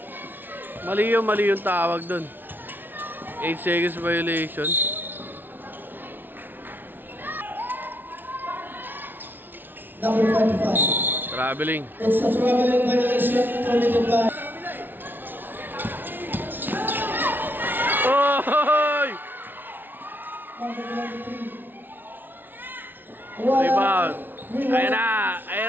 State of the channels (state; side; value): late; left; 0.094 ms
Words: Mali yung tawag doon. 8 seconds violation. Number 25. Traveling. It's a traveling violation committed by... Oy! Number 23. Rebound. Ayan na!